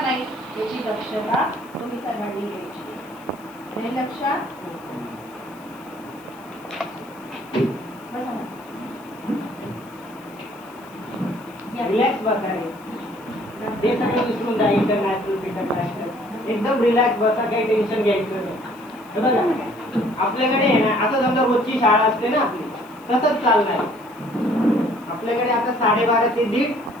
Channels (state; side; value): noise; left; hiss, 26 dB below the sound